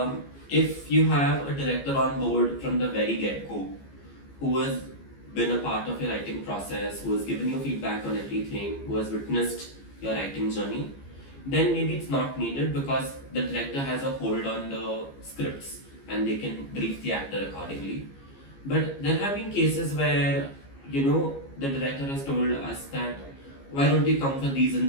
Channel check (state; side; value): late; right; 15 ms